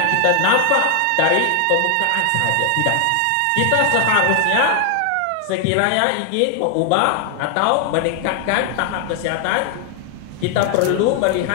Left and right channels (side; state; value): both; different; correlation 0.00